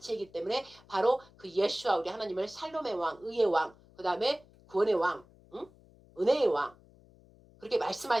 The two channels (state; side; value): noise; left; hum, 26 dB below the sound